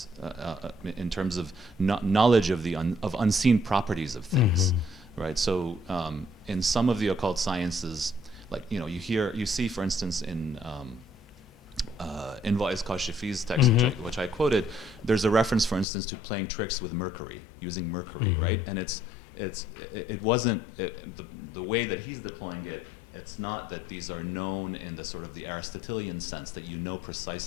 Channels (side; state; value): right; drops out; at 15.9 s